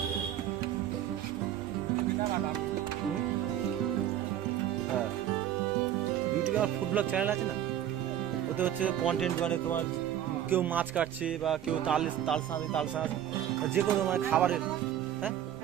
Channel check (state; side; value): quieter; left; 11.0 dB